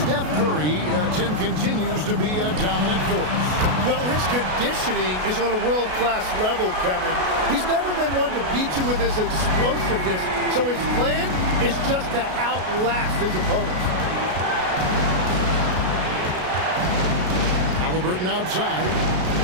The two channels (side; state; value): left; late; 33 ms